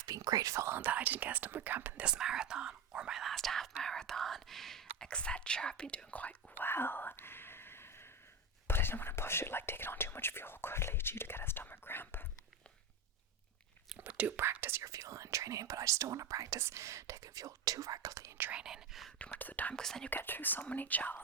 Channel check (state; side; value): quieter; left; 4.0 dB